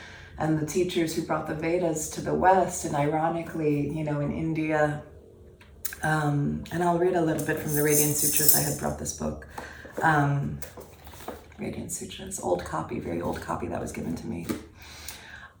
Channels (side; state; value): both; identical; correlation 1.00